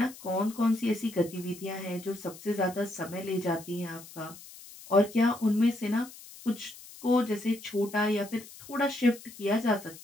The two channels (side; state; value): left; noise; hiss, 18 dB below the sound